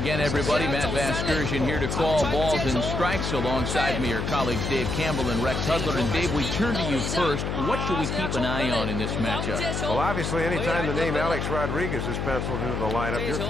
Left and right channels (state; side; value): noise; left; hum, 2 dB below the sound